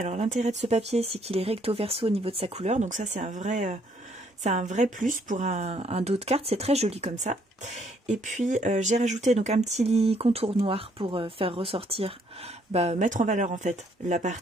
l'intérêt de ce papier, c'est qu'il est recto verso au niveau de sa couleur, donc ça c'est un vrai plus pour un dos de carte, c'est très joli comme ça. Et puis j'ai rajouté donc un petit contour noir pour faire ressortir, mettre en valeur en fait la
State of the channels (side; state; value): both; normal; correlation 0.67